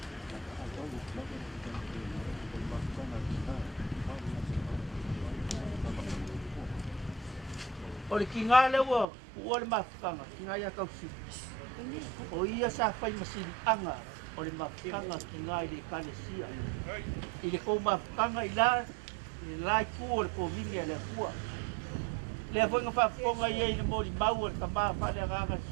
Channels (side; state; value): left; drops out; at 9.1 s